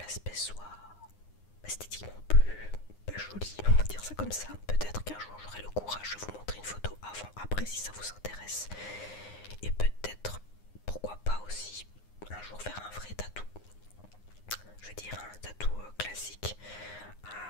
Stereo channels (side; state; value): right; late; 9.7 ms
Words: comme ça. Peut-être qu'un jour j'aurai le courage de vous montrer une photo avant, après si ça vous intéresse. Et peut-être, pourquoi pas aussi, un jour faire un vrai tatou. Je veux dire un tatou classique,